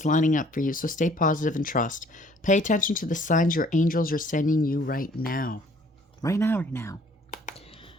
lining up for you, so stay positive and trust. Pay attention to the signs your angels are sending you right now. Right now.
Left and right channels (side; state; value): both; normal; correlation 0.58